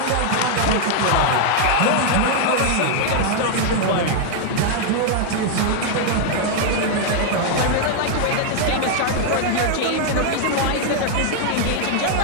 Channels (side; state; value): both; different; correlation 0.00